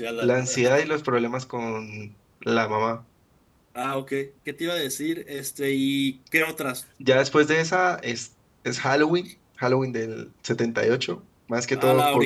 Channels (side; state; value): both; identical; correlation 1.00